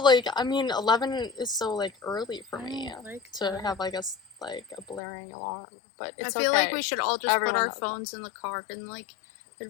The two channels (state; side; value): drops out; right; at 5.0 s